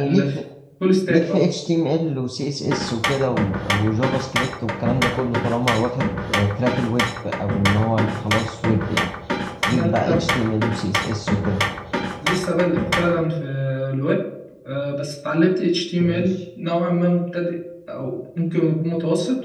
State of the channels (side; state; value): both; identical; correlation 1.00